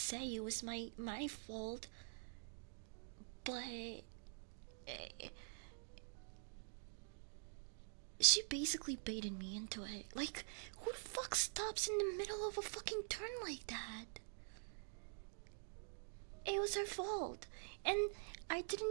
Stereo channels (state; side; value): silent; left; digital silence